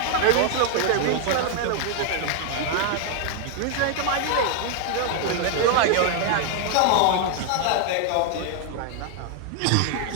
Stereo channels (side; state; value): both; different; correlation 0.00